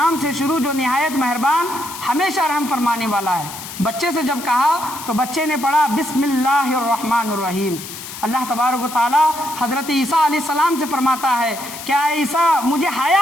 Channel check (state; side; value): noise; left; hiss, 11 dB below the sound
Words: سے شروع جو نہایت مہربان، ہمیشہ رحم فرمانے والا ہے۔ بچے سے جب کہا تو بچے نے پڑھا بسم اللہ الرحمن الرحیم۔ اللہ تبارک و تعالیٰ حضرت عیسیٰ علیہ السلام سے فرماتا ہے کیا عیسیٰ مجھے